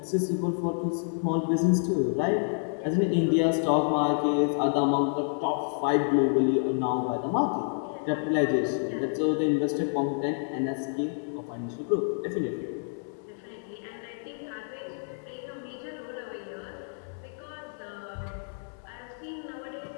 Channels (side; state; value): right; silent; digital silence